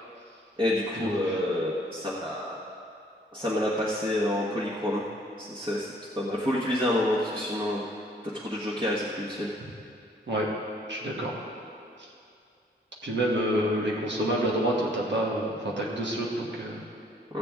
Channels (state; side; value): normal; both; correlation 0.60